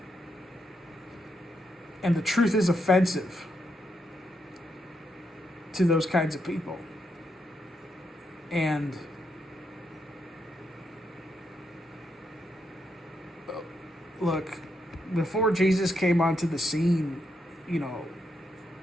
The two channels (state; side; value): normal; both; correlation 0.80